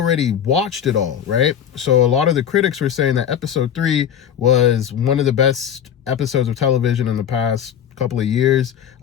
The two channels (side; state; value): right; quieter; 9.1 dB